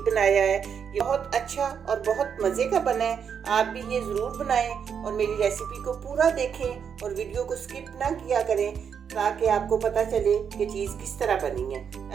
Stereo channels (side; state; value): left; quieter; 7.3 dB